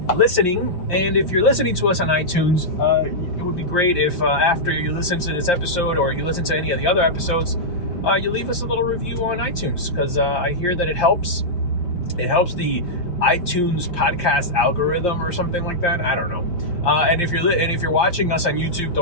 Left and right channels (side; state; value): right; late; 5.7 ms